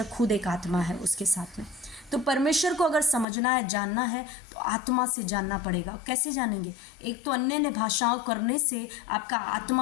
खुद एक आत्मा है उसके साथ में। तो परमेश्वर को अगर समझना है, जानना है, तो आत्मा से जानना पड़ेगा। कैसे जानेंगे? एक तो अन्य भाषाओं करने से आपका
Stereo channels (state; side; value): drops out; right; at 3.2 s